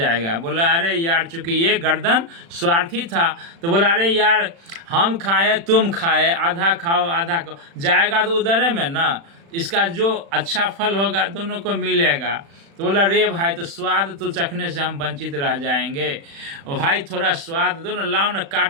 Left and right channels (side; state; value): left; late; 36 ms